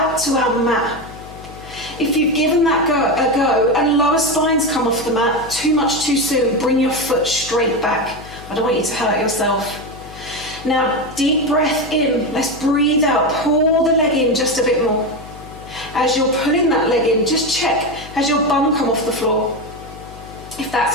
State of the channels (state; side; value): noise; left; hum, 17 dB below the sound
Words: to our mat. If you've given that a go and lower spines come off the mat too much too soon, bring your foot straight back. I don't want you to hurt yourself. Now, deep breath in. Let's breathe out. Pull the leg in just a bit more. As you're pulling that leg in, just check. Has your bum come off the floor? If that's